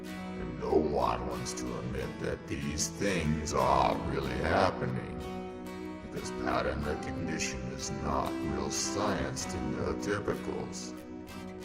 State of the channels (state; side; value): identical; both; correlation 1.00